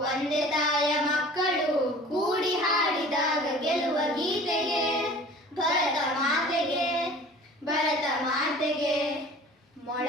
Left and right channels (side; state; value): both; normal; correlation 0.45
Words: ಒಂದೇ ತಾಯ ಮಕ್ಕಳು, ಕೂಡಿ ಹಾಡಿದಾಗ ಗೆಲ್ಲುವ ಗೀತೆಗೆ ಭರತ ಮಾತೆಗೆ, ಭರತ ಮಾತೆಗೆ.